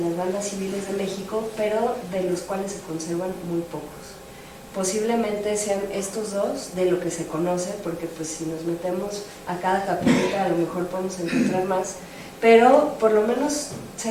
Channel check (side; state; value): both; identical; correlation 1.00